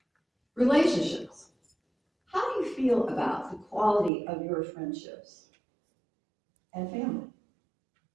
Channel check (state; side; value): drops out; left; at 4.1 s